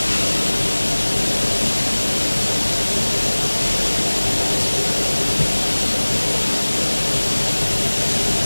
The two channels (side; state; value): both; inverted; correlation -1.00